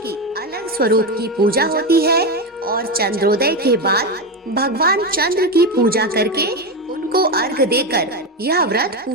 अलग स्वरूप की पूजा होती है और चंद्रोदय के बाद भगवान चंद्र की पूजा करके उनको अर्घ देकर यह व्रत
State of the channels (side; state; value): both; normal; correlation 0.13